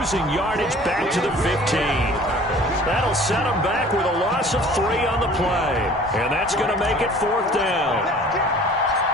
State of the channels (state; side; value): normal; both; correlation 0.49